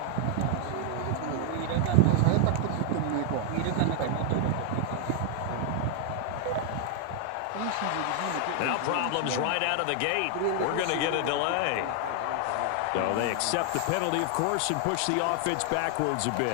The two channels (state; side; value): different; both; correlation 0.00